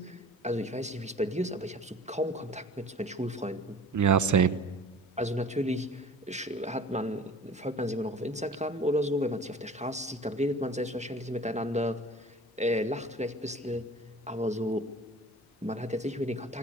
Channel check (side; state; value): both; normal; correlation 0.43